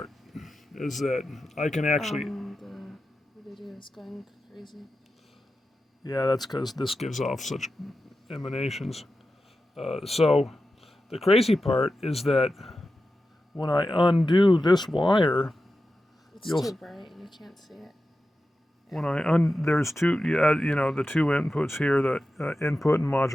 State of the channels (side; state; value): both; normal; correlation 0.92